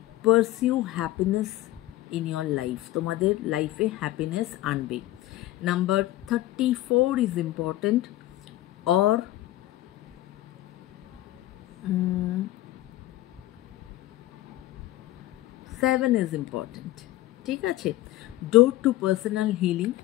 pursue happiness in your life. তোমাদের লাইফে হ্যাপিনেস আনবে। Number 34 is important, or 7 is important. ঠিক আছে, door to personal healing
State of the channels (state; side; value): quieter; right; 16.0 dB